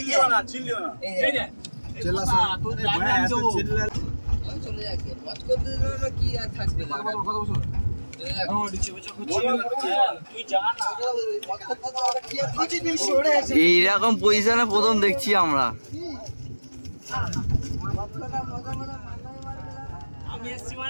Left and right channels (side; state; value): both; inverted; correlation -1.00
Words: না। চলে যাচ্ছে বচ করতে দিল কি আর থাকবে না এইরকম পজিশনে প্রথম দেখছি আমরা। আমি এসছি